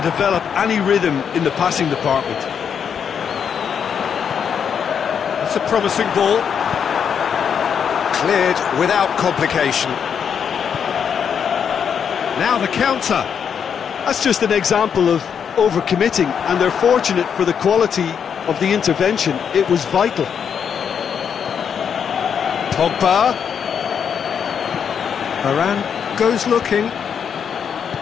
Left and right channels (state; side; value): quieter; right; 7.4 dB